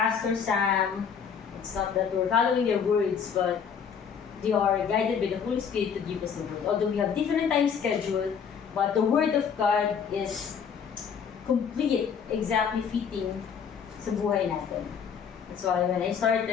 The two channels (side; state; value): right; quieter; 7.0 dB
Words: Sam, it's not that we're following their words, but they are guided by the Holy Spirit to give us the word. Although we have different time schedule, but the word of God is complete, exactly fitting sa buhay natin. That's why when I